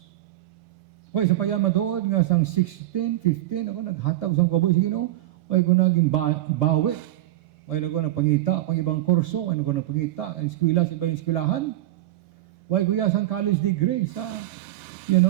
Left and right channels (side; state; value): left; quieter; 15.1 dB